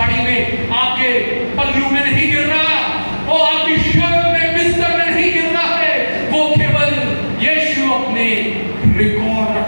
में, आपके पल्लू में नहीं गिर रहा, वो आपकी शर्ट में, बिस्तर में नहीं गिर रहा है, वो केवल यीशु अपने रिकॉर्ड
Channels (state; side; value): inverted; both; correlation -1.00